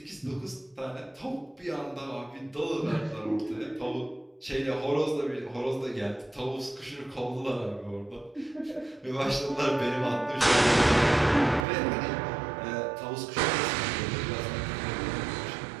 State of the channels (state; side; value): drops out; left; at 11.7 s